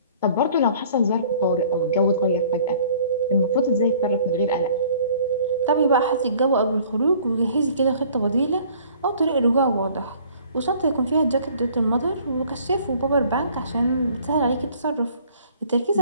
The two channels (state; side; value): inverted; both; correlation -0.54